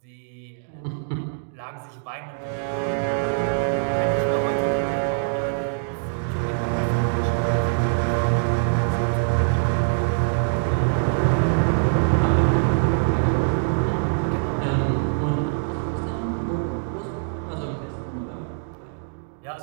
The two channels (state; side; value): silent; left; digital silence